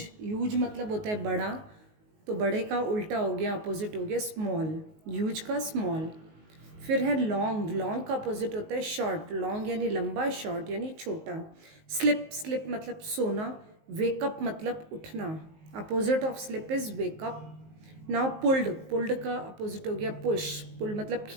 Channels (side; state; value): left; late; 19 ms